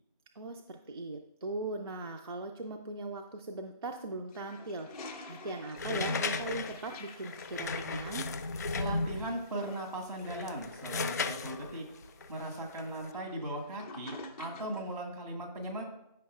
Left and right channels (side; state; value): both; inverted; correlation -0.39